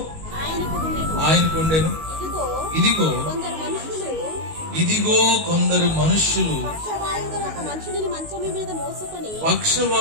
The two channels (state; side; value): late; left; 19 ms